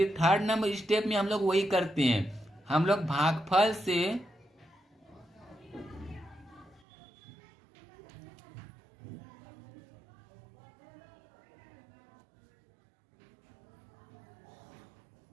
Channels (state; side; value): drops out; left; at 6.8 s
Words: थर्ड नंबर स्टेप में हम लोग वही करते हैं, हम लोग भागफल से